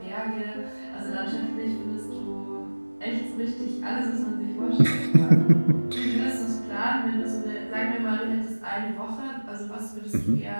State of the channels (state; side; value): inverted; both; correlation -1.00